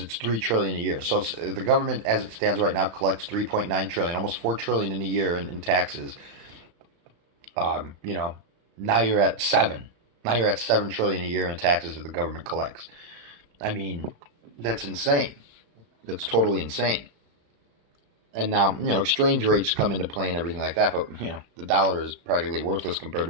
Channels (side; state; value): left; late; 35 ms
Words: 3 trillion a year. So the government, as it stands right now, collects 3.9 trillion, almost 4 trillion in a year in taxes. You know, now you're at 7. Now you're at 7 trillion a year in taxes that the government collects. I mean, that's insane. That's totally insane. And now, exchange rates come into play and everything like that, but, the dollar is practically worthless compared